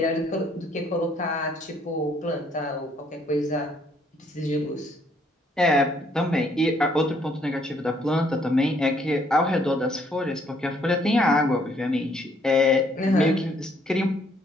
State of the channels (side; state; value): both; normal; correlation 0.67